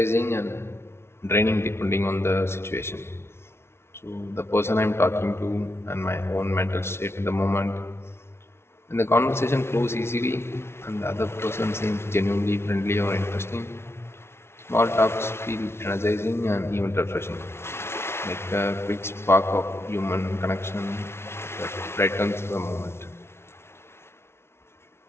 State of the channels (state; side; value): late; right; 0.12 ms